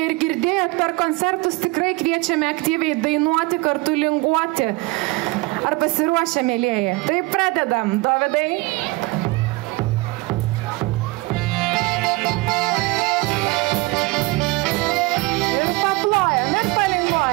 ir girdėjot per koncertus, tikrai kviečiame aktyviai dainuoti, kartu linguoti. Ar pasiruošę, mėlieji? Tai pradedam, Dovydai. Ir paplojam, ir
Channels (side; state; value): left; quieter; 23.3 dB